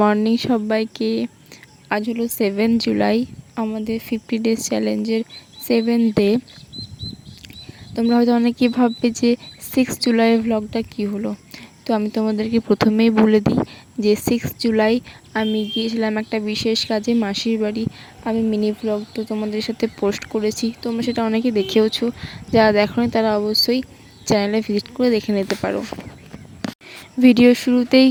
morning সবাইকে। আজ হলো 7 জুলাই, আমাদের 50 ডেজ চ্যালেঞ্জের 7th ডে। তোমরা হয়তো অনেকেই ভাববে যে 6 জুলাইয়ের ভ্লগটা কী হলো। তো আমি তোমাদেরকে প্রথমেই বলে দিই যে 6 জুলাই আমি গিয়েছিলাম একটা বিশেষ কাজে মাসির বাড়ি। আমি মিনি ভ্লগ তো তোমাদের সাথে পোস্ট করেছি, তোমরা সেটা অনেকে দেখেওছো। যারা দেখোনি তারা অবশ্যই চ্যানেলে ভিজিট করে দেখে নিতে পারো। ভিডিও শুরুতেই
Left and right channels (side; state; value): both; identical; correlation 1.00